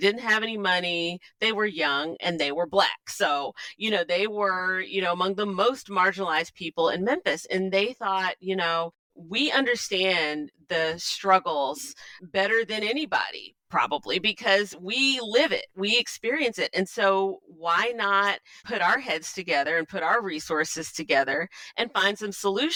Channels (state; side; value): identical; both; correlation 1.00